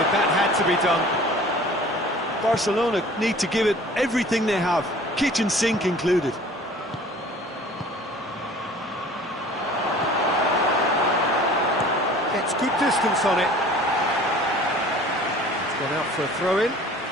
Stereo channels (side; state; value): both; normal; correlation 0.47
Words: that had to be done. Barcelona need to give it everything they have, kitchen sink included. Gets good distance on it. It's gone out for a throw-in.